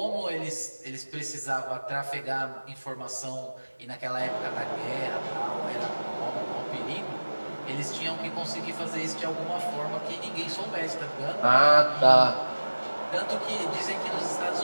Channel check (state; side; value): inverted; both; correlation -1.00